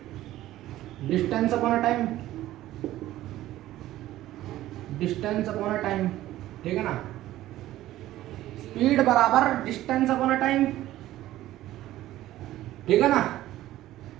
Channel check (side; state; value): left; quieter; 14.8 dB